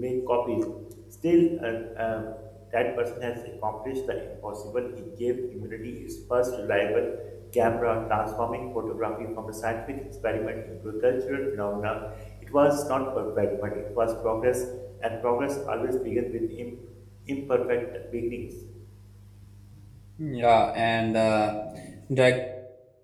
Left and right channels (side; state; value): both; identical; correlation 1.00